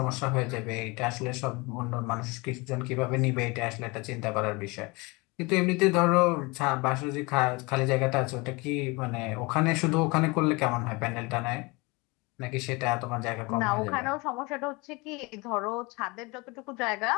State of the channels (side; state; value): right; quieter; 26.0 dB